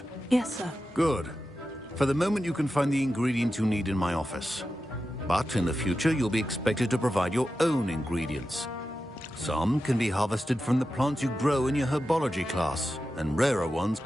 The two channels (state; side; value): normal; both; correlation 0.91